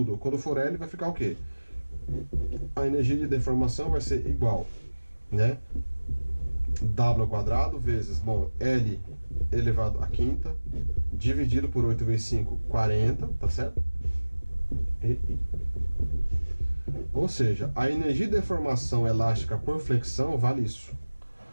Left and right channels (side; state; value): both; inverted; correlation -1.00